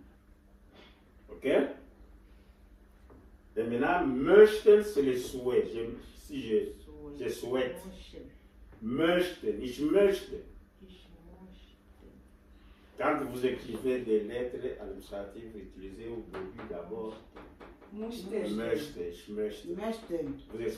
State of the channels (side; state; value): both; identical; correlation 1.00